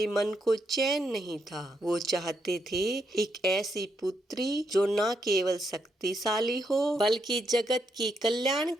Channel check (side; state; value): both; normal; correlation 0.79